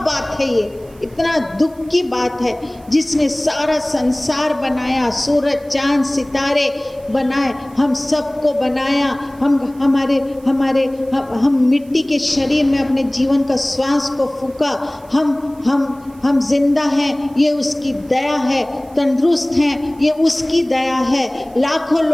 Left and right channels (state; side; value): noise; right; hiss, 28 dB below the sound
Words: बात है ये, इतना दुख की बात है। जिसने सारा संसार बनाया, सूरज चांद सितारे बनाए, हम सबको बनाया, हम मिट्टी के शरीर में अपने जीवन का श्वास को फूंका, हम जिंदा हैं, ये उसकी दया है, तंदुरुस्त हैं, ये उसकी दया है। लाखों